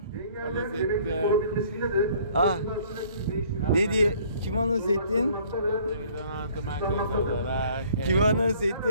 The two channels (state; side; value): inverted; both; correlation -0.57